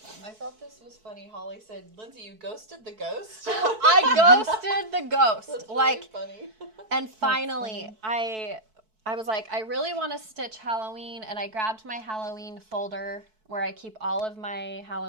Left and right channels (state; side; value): late; left; 4.6 ms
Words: I thought this was funny. Holly said, Lindsay, you ghosted the ghost? I ghosted the ghost. That's really funny. And finally, I was like, I really want to stitch Halloween, and I grabbed my Halloween folder where I keep all of my